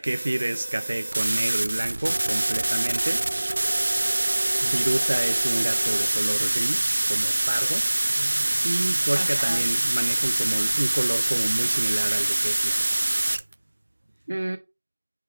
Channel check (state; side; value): inverted; both; correlation -1.00